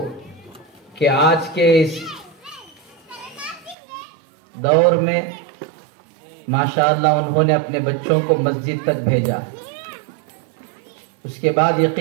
کہ آج کے اس دور میں ماشاءاللہ انہوں نے اپنے بچوں کو مسجد تک بھیجا۔ اس کے بعد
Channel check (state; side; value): drops out; left; at 3.8 s